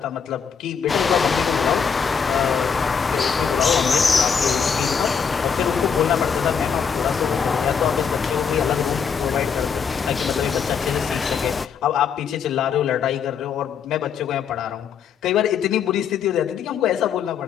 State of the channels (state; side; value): quieter; right; 6.7 dB